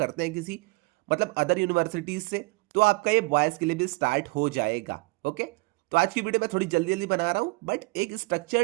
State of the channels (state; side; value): quieter; left; 26.1 dB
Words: हैं किसी मतलब अदर यूनिवर्सिटीज से, तो आपका ये बॉयज के लिए भी स्टार्ट हो जाएगा। ओके, तो आज की वीडियो मैं थोड़ी जल्दी जल्दी बना रहा हूँ, बट एक